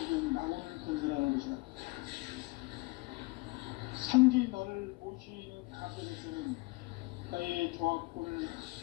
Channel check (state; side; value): quieter; right; 25.0 dB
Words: 낙원을 건설하는 것이다. 상제인 나를 모시는 자세로서는 나의 조합권을